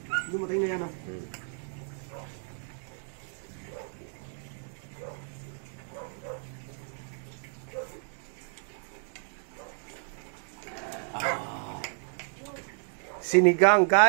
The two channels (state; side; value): silent; left; 57 dB below the other